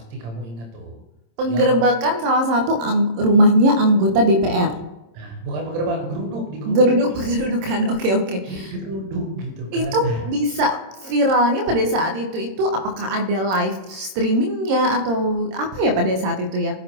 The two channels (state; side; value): late; left; 26 ms